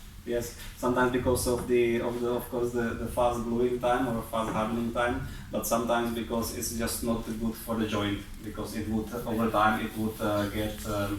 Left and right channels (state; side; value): identical; both; correlation 1.00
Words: Yes, sometimes because of of course the fast gluing time or fast hardening time, but sometimes because it's just not good for the joint, because it would over time it would get